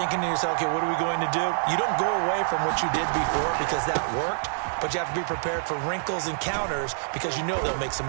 to yourself, okay, what are we going to do? You don't go away from what you did before because that worked, but you have to be prepared for wrinkles and counters because you know they'll make some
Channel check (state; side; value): silent; left; 61 dB below the other